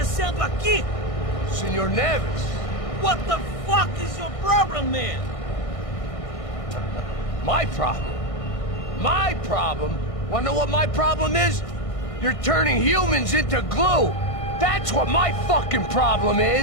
aqui? Senor Neves. What the fuck is your problem, man? My problem? My problem? Wanna know what my problem is? You're turning humans into glue! That's what my fucking problem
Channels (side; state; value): right; late; 1.6 ms